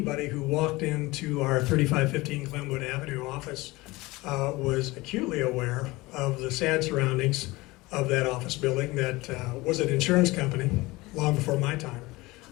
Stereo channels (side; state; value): right; quieter; 21.3 dB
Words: who walked into our 3515 Glenwood Avenue office was acutely aware of the sad surroundings of that office building that was an insurance company long before my time.